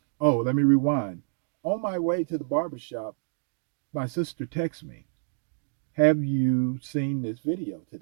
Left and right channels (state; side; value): silent; left; digital silence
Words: Oh, let me rewind. On my way to the barber shop, my sister texts me, "Have you seen this video